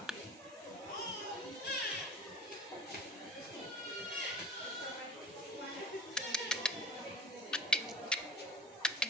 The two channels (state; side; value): normal; both; correlation 0.40